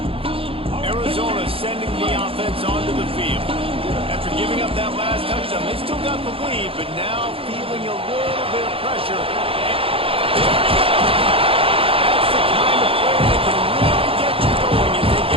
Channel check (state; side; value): late; left; 0.27 ms